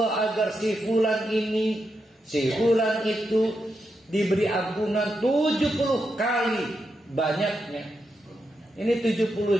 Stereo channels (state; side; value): normal; both; correlation 0.85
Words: agar si fulan ini, si fulan itu diberi ampunan 70 kali banyaknya. Ini